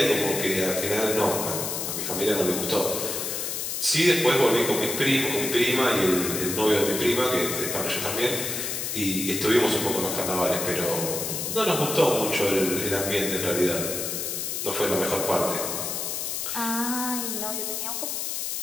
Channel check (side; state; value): left; noise; hiss, 3 dB below the sound